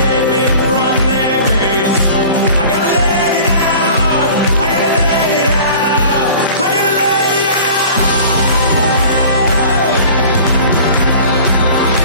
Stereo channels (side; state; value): both; inverted; correlation -0.43